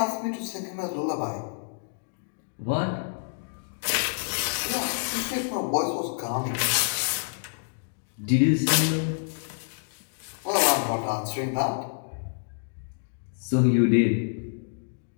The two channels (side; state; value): right; silent; digital silence